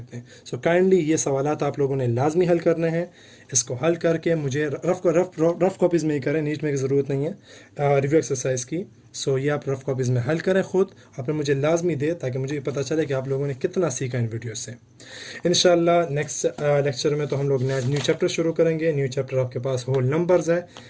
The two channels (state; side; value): identical; both; correlation 1.00